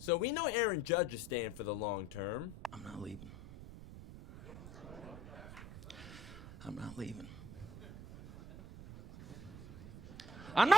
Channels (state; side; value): noise; right; rumble, 12 dB below the sound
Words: So we know Aaron Judge is staying for the long term. I'm not leaving. I'm not leaving. I'm